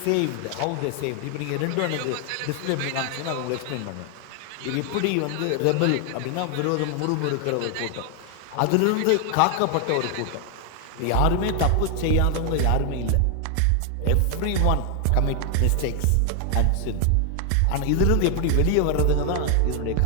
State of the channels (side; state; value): both; different; correlation 0.00